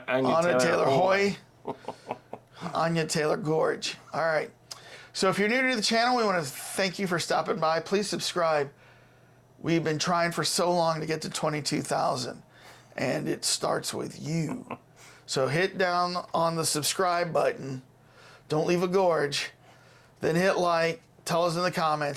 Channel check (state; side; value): identical; both; correlation 1.00